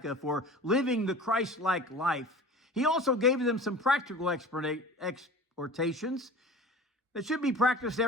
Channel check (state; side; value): normal; both; correlation 0.39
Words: for living the Christ-like life, he also gave them some practical exhortations that should be practiced